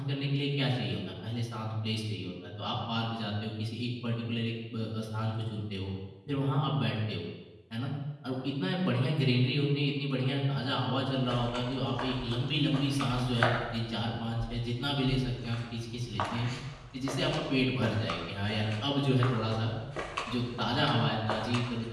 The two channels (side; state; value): both; identical; correlation 1.00